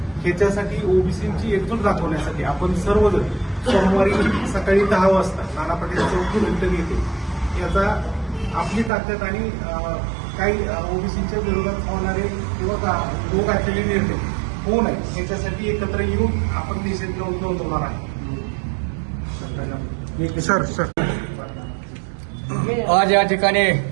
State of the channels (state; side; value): drops out; left; at 8.9 s